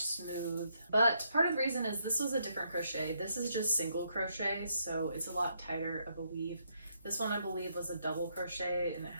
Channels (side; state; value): both; inverted; correlation -0.76